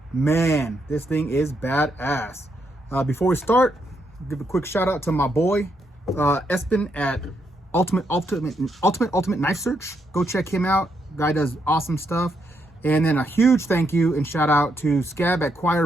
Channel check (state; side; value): normal; both; correlation 0.78